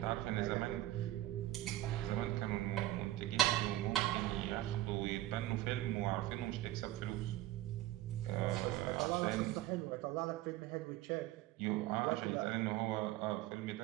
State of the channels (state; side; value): quieter; left; 15.4 dB